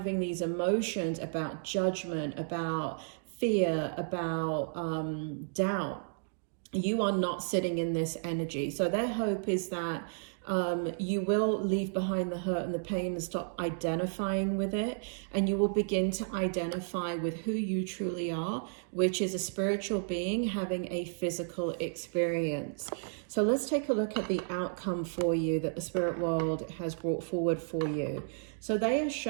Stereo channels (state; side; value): silent; left; digital silence